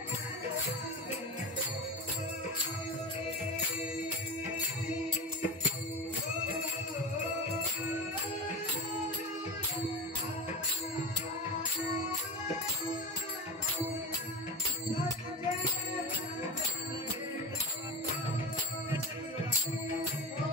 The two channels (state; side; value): normal; both; correlation 0.25